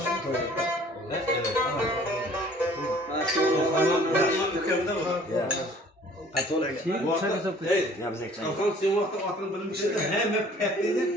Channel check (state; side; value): normal; both; correlation 0.53